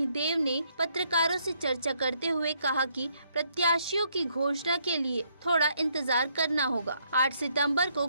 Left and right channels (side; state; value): both; inverted; correlation -0.71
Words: ने पत्रकारों से चर्चा करते हुए कहा कि प्रत्याशियों की घोषणा के लिए थोड़ा इंतजार करना होगा। 8 सितंबर को